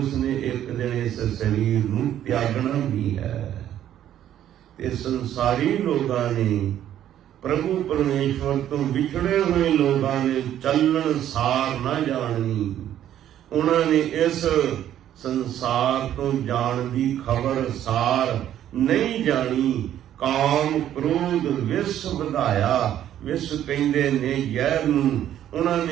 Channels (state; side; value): quieter; left; 11.3 dB